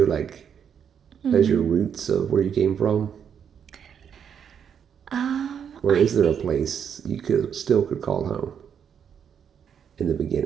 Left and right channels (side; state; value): left; quieter; 7.9 dB